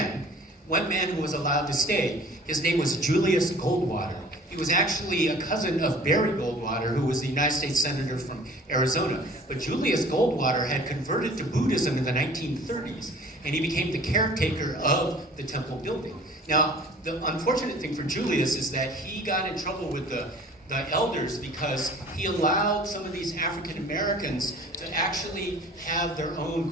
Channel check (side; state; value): both; normal; correlation 0.47